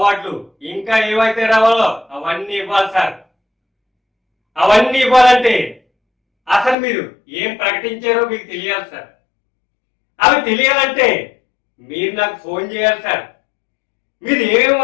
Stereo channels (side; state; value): right; drops out; at 6.8 s